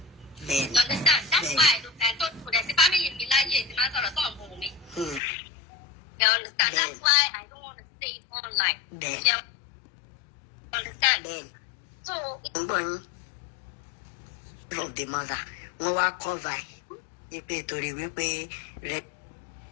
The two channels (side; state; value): right; drops out; at 5.2 s